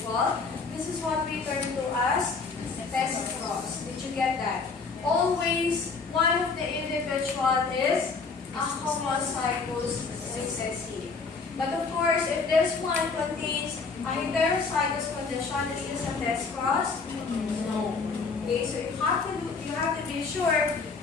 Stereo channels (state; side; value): quieter; right; 4.6 dB